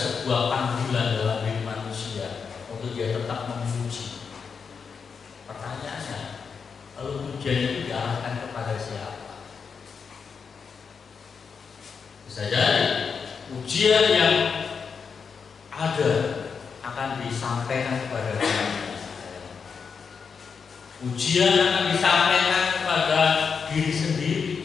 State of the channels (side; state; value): right; quieter; 5.9 dB